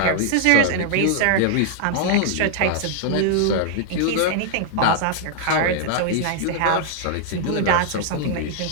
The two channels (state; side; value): different; both; correlation 0.00